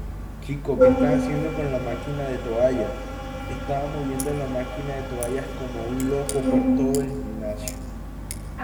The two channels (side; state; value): both; identical; correlation 1.00